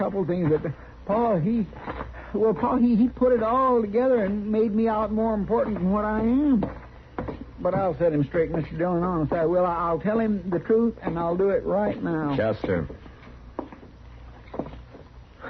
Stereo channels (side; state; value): both; identical; correlation 1.00